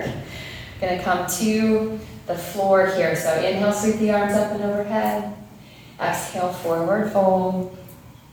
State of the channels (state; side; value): identical; both; correlation 1.00